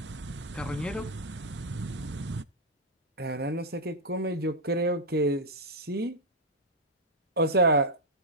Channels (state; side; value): normal; both; correlation -0.05